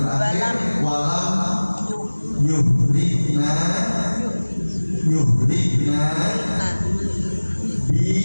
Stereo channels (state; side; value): inverted; both; correlation -1.00